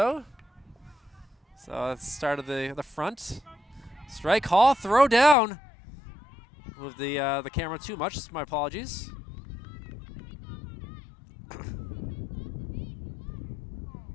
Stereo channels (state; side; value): drops out; right; at 5.4 s